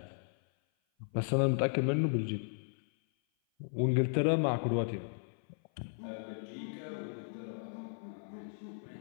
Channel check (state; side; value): silent; right; 54 dB below the other